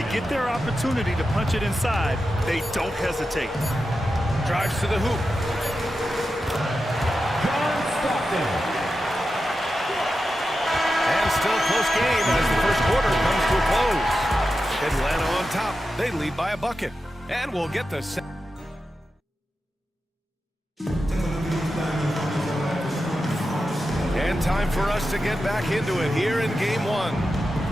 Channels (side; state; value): both; normal; correlation 0.91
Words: get their opportunity to punch it inside, they don't hesitate. Drives to the hoop. And still a close game as the first quarter comes to a close. Atlanta on top. They lead by a bucket. And we'll get the second. And time for us to get back into it here in game 1.